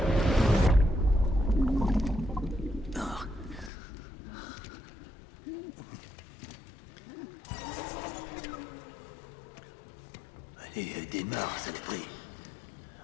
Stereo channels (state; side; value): drops out; right; at 3.7 s